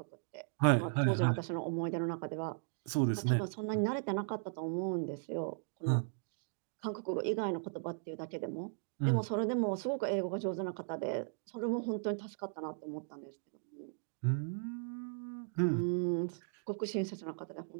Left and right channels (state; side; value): silent; left; digital silence